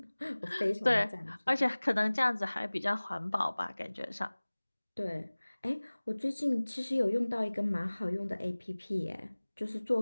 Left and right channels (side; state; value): both; inverted; correlation -1.00